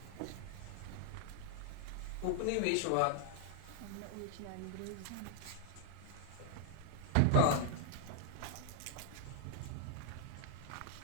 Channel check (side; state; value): both; different; correlation -0.01